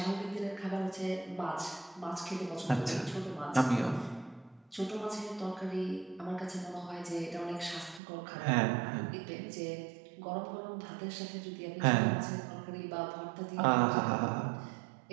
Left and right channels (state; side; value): drops out; left; at 8.0 s